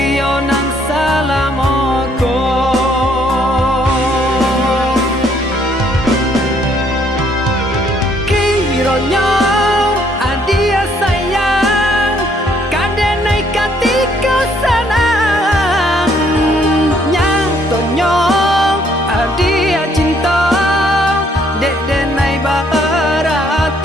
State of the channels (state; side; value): normal; both; correlation 0.66